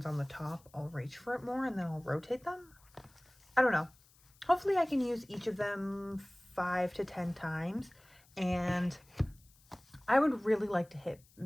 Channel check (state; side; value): noise; left; hiss, 29 dB below the sound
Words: on the top, I'll reach for it more and then I'll rotate them. I don't know. Hopefully I can use each of them 5 to 10 times, and I would really like to hit